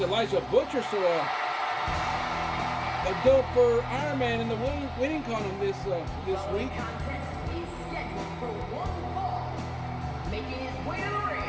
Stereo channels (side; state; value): both; identical; correlation 1.00